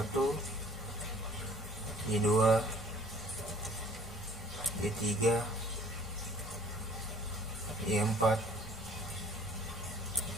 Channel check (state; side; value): normal; both; correlation 0.54